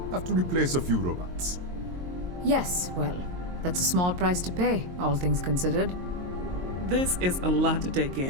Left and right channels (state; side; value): late; left; 22 ms